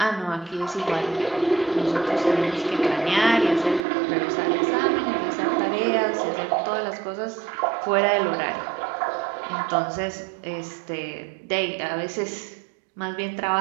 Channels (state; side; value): drops out; left; at 3.8 s